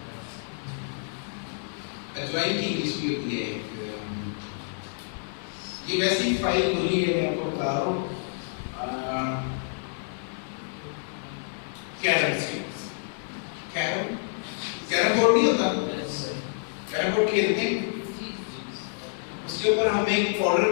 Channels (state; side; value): silent; right; digital silence